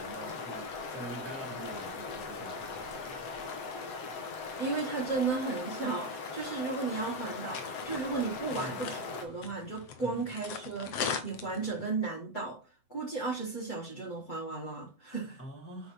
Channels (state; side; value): late; right; 7.8 ms